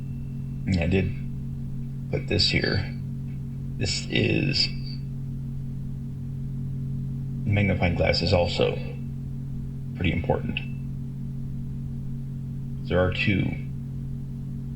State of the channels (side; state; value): both; identical; correlation 1.00